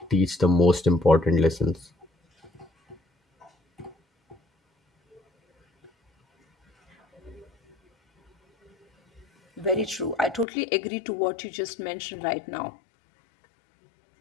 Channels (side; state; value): right; drops out; at 10.5 s